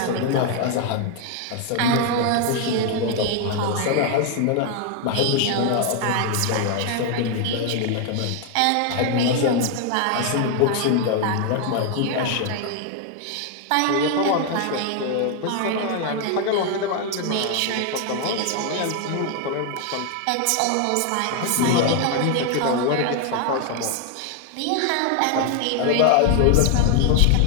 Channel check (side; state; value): both; different; correlation 0.01